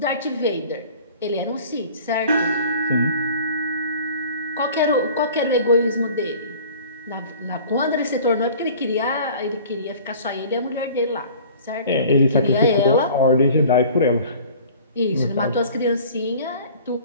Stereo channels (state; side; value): inverted; both; correlation -0.46